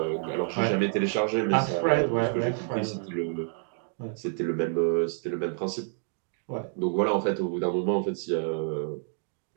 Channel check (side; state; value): left; silent; 59 dB below the other